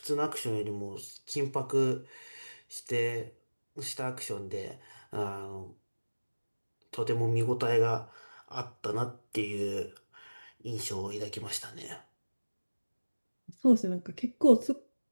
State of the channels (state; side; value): inverted; both; correlation -1.00